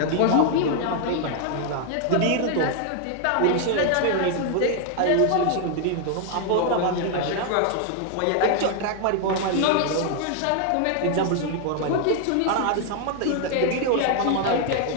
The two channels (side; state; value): both; different; correlation 0.00